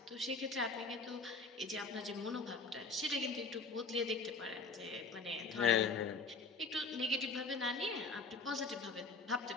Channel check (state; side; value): quieter; right; 4.0 dB